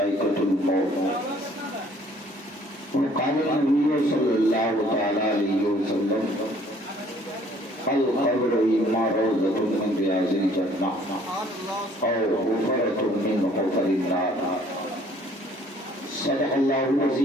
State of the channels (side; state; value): both; normal; correlation 0.58